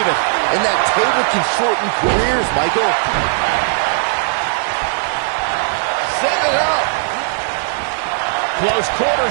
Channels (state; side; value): silent; left; digital silence